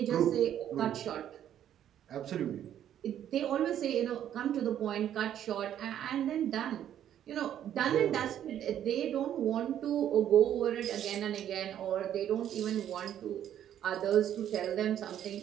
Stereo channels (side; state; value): left; quieter; 10.5 dB